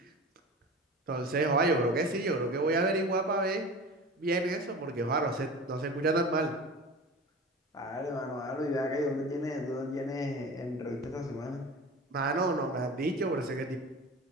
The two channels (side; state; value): both; normal; correlation 0.35